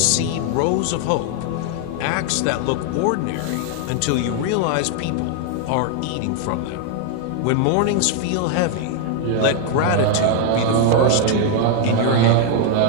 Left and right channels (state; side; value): different; both; correlation 0.00